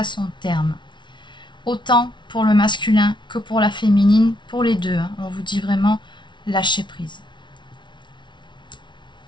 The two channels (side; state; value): right; late; 0.23 ms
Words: son terme. Autant pour le masculin que pour la féminine, pour les deux. Hein. On vous dit vraiment lâcher prise.